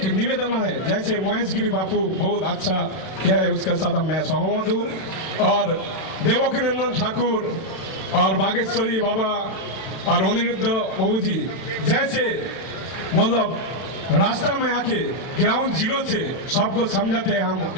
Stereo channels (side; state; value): right; late; 31 ms